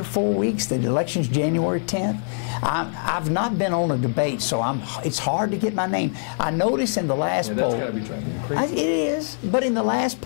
or 4 weeks. The election's January 10th. I've not been on a debate, so it's hard to get my name. I noticed in the last poll... Yeah, that's got to be driving you crazy. It is, but in the last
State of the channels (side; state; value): right; silent; 55 dB below the other